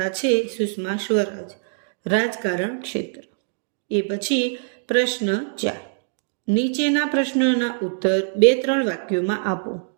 છે સુષ્મા સ્વરાજ, રાજકારણ ક્ષેત્ર. એ પછી પ્રશ્ન 4, નીચેના પ્રશ્નોના ઉત્તર 2-3 વાક્યોમાં આપો.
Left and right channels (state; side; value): silent; left; digital silence